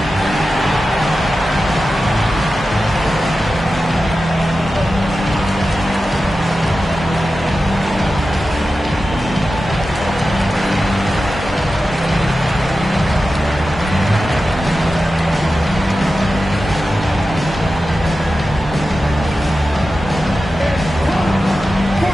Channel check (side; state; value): both; normal; correlation 0.93